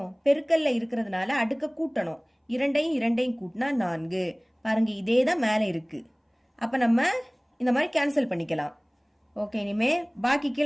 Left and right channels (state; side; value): identical; both; correlation 1.00